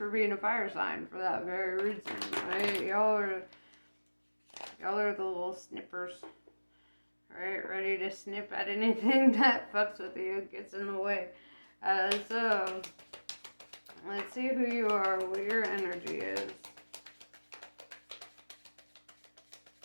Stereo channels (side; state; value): both; inverted; correlation -1.00